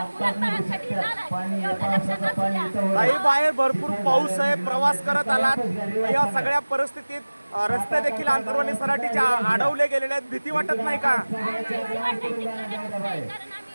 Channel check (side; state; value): both; inverted; correlation -1.00